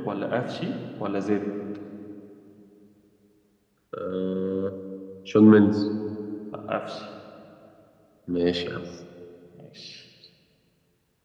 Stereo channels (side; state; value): both; identical; correlation 1.00